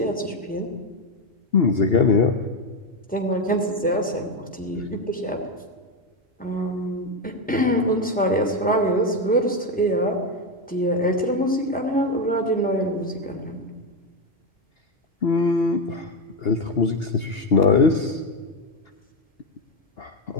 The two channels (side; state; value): both; normal; correlation 0.10